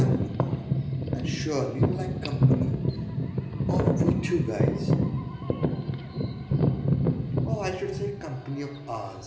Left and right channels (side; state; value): both; identical; correlation 1.00